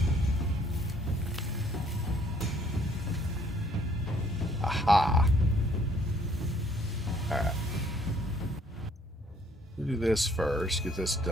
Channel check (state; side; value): normal; both; correlation 0.63